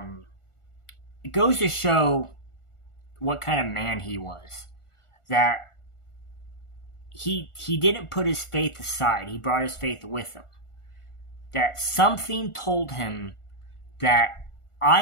goes to show what kind of man he was. That he didn't put his faith aside. He brought his faith with him. That something told him that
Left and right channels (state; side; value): late; right; 1.4 ms